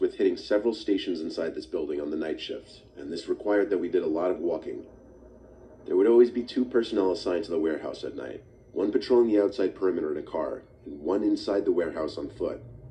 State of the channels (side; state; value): both; identical; correlation 1.00